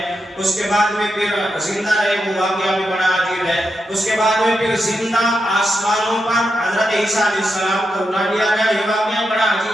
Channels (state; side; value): normal; both; correlation 0.86